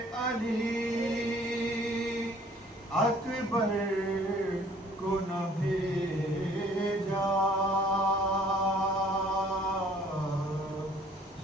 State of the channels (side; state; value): both; normal; correlation 0.57